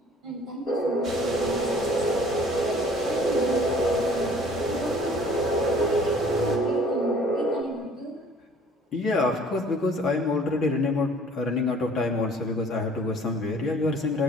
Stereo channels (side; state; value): both; normal; correlation 0.53